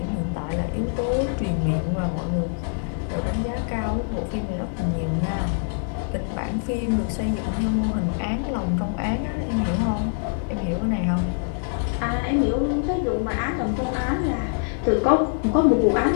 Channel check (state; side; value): silent; right; digital silence